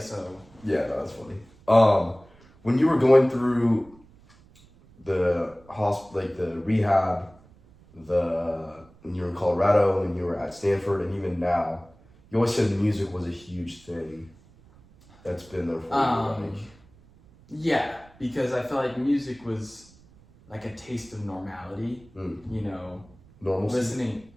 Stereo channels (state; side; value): noise; right; rumble, 27 dB below the sound